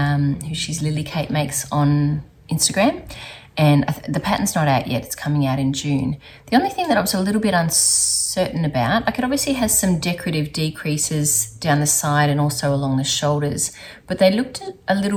Lily Kate makes on Instagram. And the pattern's not out yet. It's coming out in June. The only thing that I was a little bit uncertain about, it obviously has some decorative decreases down the side and also along the shoulders, but they looked a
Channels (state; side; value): identical; both; correlation 1.00